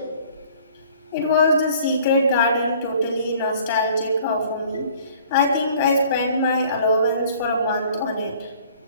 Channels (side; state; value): both; inverted; correlation -0.53